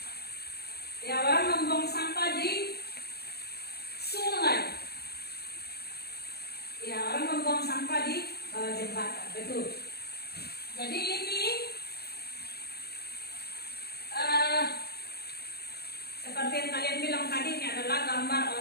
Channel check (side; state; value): right; late; 0.46 ms